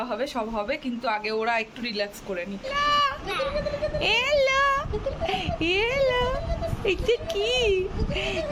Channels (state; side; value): identical; both; correlation 1.00